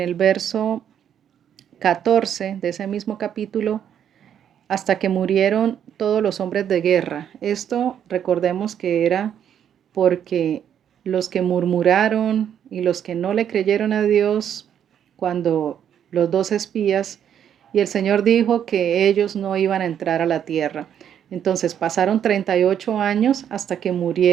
verso 14 de ese mismo capítulo, hasta que murieron todos los hombres de guerra. Esto recordemos que era porque los que murmuraron y los que no le creyeron a Dios cuando los dos espías, y el Señor dijo que ellos no iban a entrar a la tierra. Entonces pasaron 38 años hasta que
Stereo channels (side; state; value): left; quieter; 9.2 dB